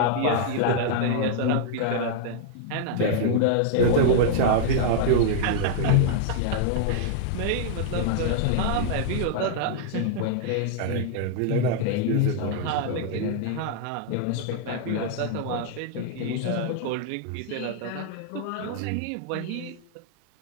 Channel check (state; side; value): different; both; correlation -0.01